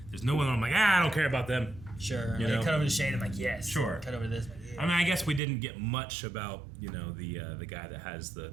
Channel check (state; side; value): drops out; left; at 5.4 s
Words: There's no one I'm like, I don't care about them. Sure. You They know? cut over to Shade. I'm like, yes. Sure. Cut over to this. I'm like, yeah. I mean, I guess we didn't get much about, the guy that has the